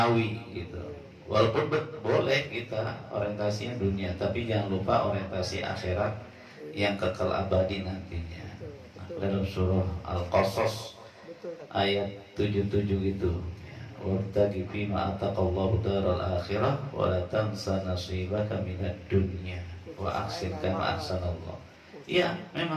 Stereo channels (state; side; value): identical; both; correlation 1.00